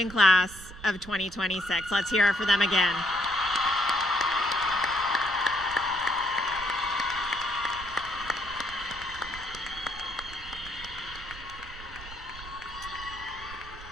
class of 2026. Let's hear it for them again.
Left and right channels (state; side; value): noise; right; rumble, 15 dB below the sound